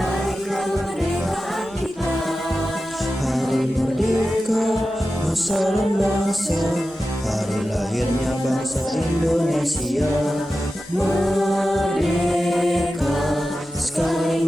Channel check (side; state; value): both; normal; correlation 0.93